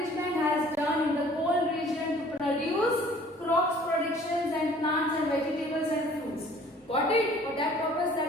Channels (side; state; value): both; normal; correlation 0.53